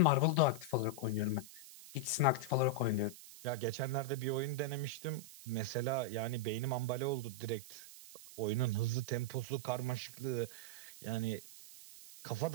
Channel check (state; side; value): noise; right; hiss, 16 dB below the sound